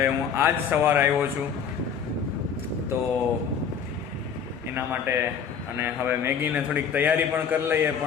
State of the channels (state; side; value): quieter; right; 7.0 dB